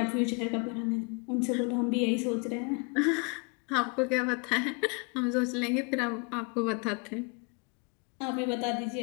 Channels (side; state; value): right; quieter; 33.4 dB